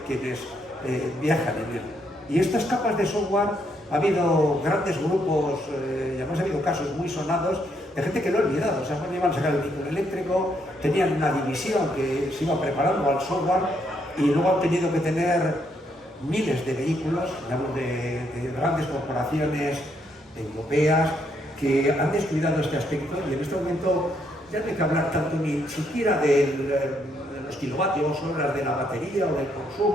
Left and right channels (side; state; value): both; normal; correlation 0.74